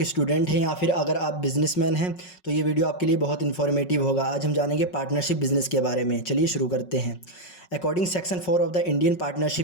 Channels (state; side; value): late; right; 5.4 ms